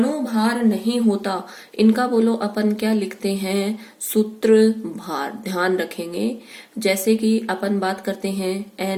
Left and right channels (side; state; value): both; identical; correlation 1.00